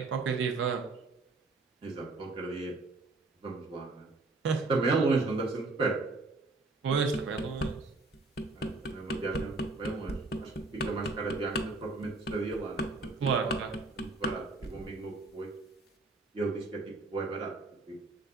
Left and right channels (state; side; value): quieter; left; 3.4 dB